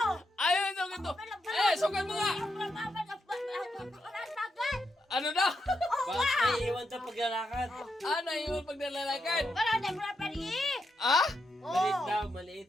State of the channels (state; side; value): normal; both; correlation 0.83